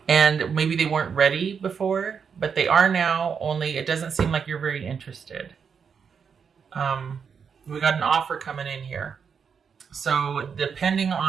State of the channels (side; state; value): left; quieter; 6.5 dB